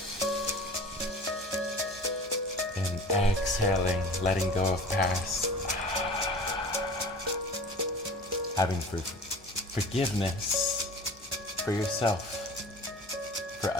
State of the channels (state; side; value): normal; both; correlation 0.41